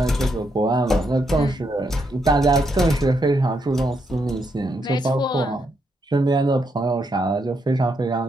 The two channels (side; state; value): both; normal; correlation 0.78